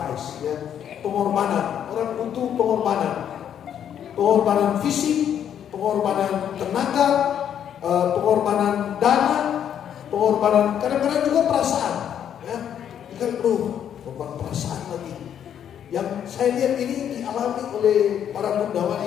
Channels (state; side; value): quieter; right; 9.3 dB